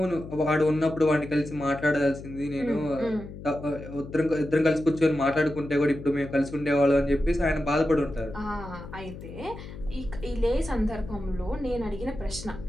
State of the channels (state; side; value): noise; left; hum, 13 dB below the sound